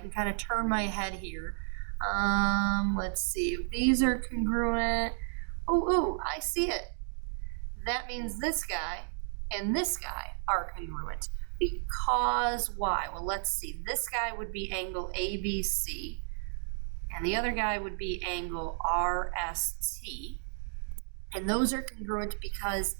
kind of turn my head here, let's see. If these are congruent, I see it. That means this guy and this guy are congruent. Because why? Well, let's see. This guy would be angle ABC, and the other guy would be angle RST. And those are congruent because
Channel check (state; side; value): silent; left; digital silence